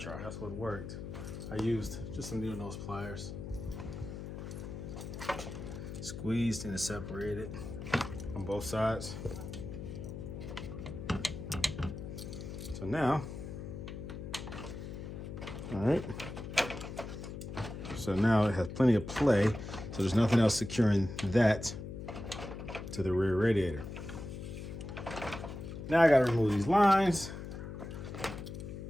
try. That's what worked. I used just some needle nose pliers. Squeezed and separated on both sides. So now, all right. So now it has plenty of play. So there's nothing else securing that to the rear radiator. Now I gotta remove these lines.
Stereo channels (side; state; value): left; noise; hum, 8 dB below the sound